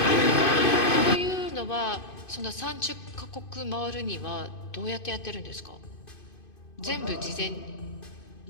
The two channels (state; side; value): late; right; 2.5 ms